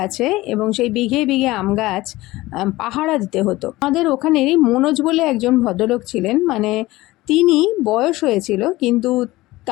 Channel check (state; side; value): quieter; right; 18.7 dB